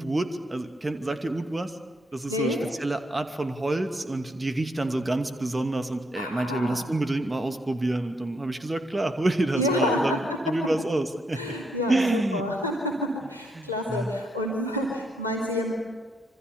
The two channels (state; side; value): normal; both; correlation 0.76